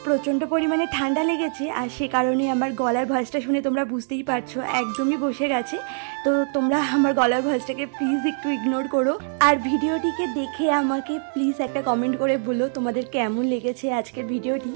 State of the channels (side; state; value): left; silent; digital silence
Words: প্রচণ্ড পরিমাণে ঠান্ডা লেগেছে, আর সে কারণে আমার গলার ভয়েসটা শুনে তোমরা বুঝতেই পারছো একদমই বসে গেছে। তো তোমরা আমার গলার ভয়েসটাকে প্লিজ একটু ইগনোর করো, আর ভিডিওটিকে দেখে আমাকে প্লিজ একটা কমেন্ট করে বলো তোমাদের কেমন লেগেছে আজকের ভিডিওটি।